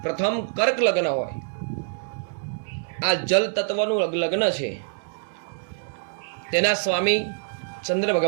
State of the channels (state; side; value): silent; left; digital silence